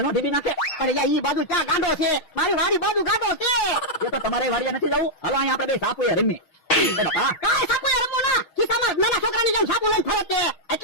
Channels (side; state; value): right; late; 6.3 ms